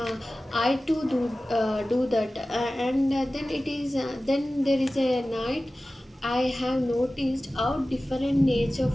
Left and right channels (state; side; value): normal; both; correlation 0.96